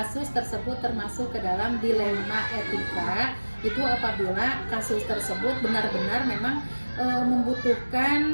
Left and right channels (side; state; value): both; inverted; correlation -1.00